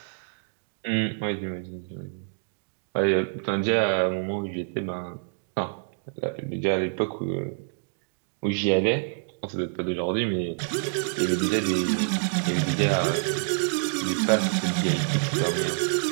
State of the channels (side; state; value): left; silent; digital silence